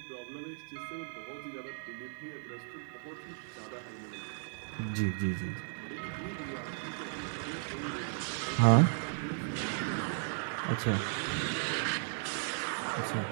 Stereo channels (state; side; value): silent; left; digital silence